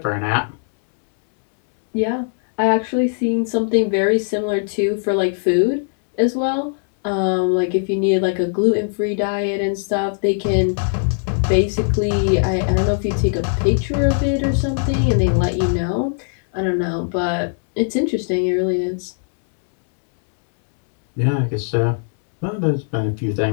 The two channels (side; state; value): right; silent; 64 dB below the other